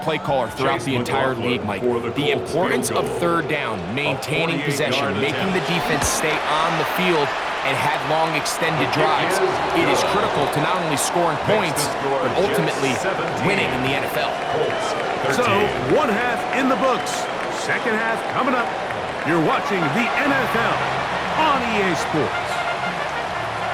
play caller throughout the entire league, Mike, the importance of third down, maintaining possession, making the defense stay on the field and have long extended drives, it is critical to not only scoring points, but ultimately winning in the NFL. So, one half in the books. Second half coming up. You're watching the NFL on EA Sports.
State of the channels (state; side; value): identical; both; correlation 1.00